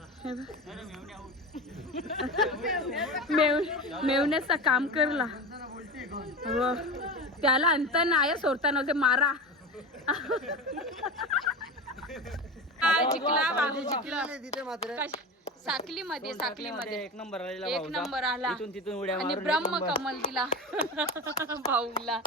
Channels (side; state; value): both; normal; correlation 0.27